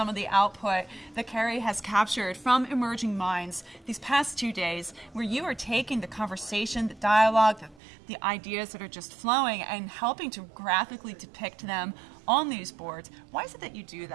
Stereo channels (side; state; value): left; drops out; at 7.8 s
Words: of the output that Carrie has captured from Emerging Minds these past 2 days, where you are taking the conversation, the dialogue, the ideas that are just flowing and helping to graphically depict them on these boards. Why is it that you do